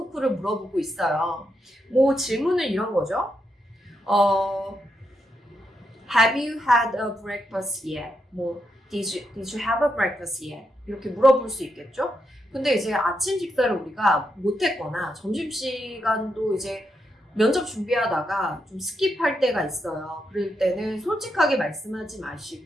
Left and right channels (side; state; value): both; normal; correlation 0.82